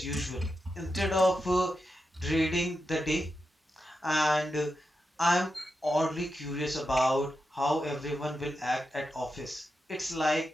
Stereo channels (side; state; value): both; normal; correlation 0.88